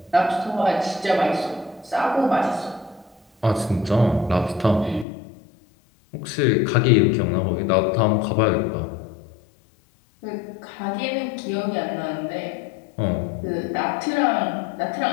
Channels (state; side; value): drops out; right; at 5.1 s